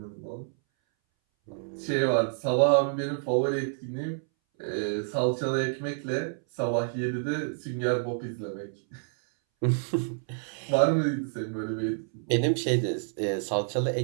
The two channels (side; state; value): left; silent; 59 dB below the other